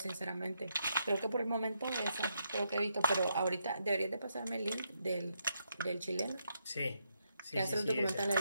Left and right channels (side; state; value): both; inverted; correlation -0.79